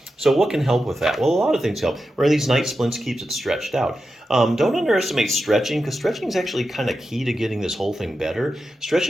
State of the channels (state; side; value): normal; both; correlation 0.90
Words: So what can help with that? Well, a lot of things help. Wearing these night splints keeps it stretched out. Don't underestimate stretching, because stretching is actually kind of key to getting this whole thing better.